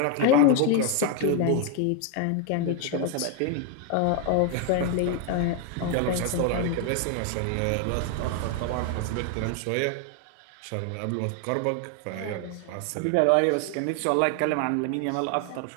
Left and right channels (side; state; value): both; different; correlation 0.00